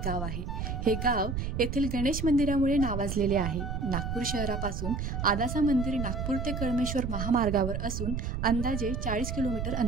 गाव आहे। हे गाव येथील गणेश मंदिरामुळे नावाजलेले आहे। नागपूर शहरापासून आदासा मंदिर नागपूर ते कळमेश्वर महामार्गावर असून अंदाजे 40 किलोमीटर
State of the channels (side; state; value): right; noise; rumble, 3 dB below the sound